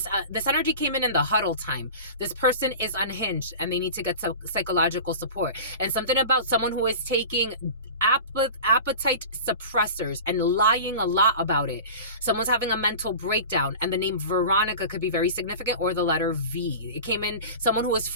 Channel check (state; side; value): inverted; both; correlation -0.34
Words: energy came in the huddle time. This person is unhinged and they need to get psychological support. And something about someone who is taking appetite suppressors and lying a lot about it. Someone's having a mental breakdown, and the name Veronica could be very significant, or the letter V. It came in someone who is